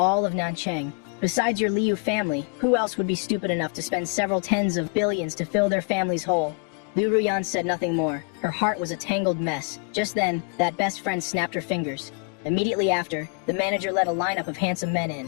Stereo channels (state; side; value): quieter; right; 37.7 dB